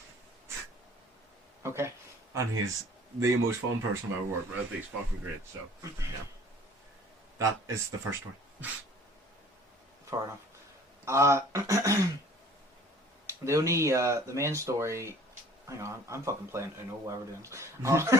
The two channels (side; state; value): both; normal; correlation 0.51